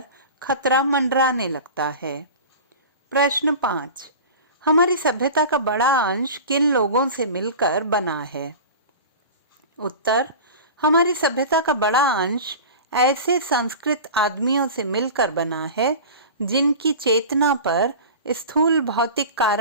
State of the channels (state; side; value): inverted; both; correlation -0.34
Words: खतरा मंडराने लगता है। प्रश्न 5, हमारी सभ्यता का बड़ा अंश किन लोगों से मिलकर बना है? उत्तर, हमारी सभ्यता का बड़ा अंश ऐसे संस्कृत आदमियों से मिलकर बना है जिनकी चेतना पर स्थूल भौतिक